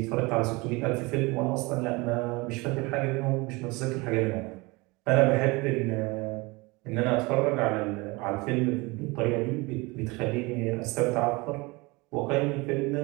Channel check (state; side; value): quieter; left; 24.8 dB